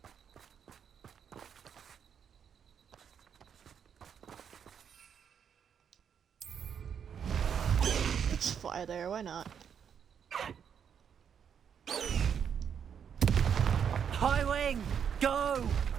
Let's fly there, why not? High wing, go!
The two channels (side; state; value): left; quieter; 7.8 dB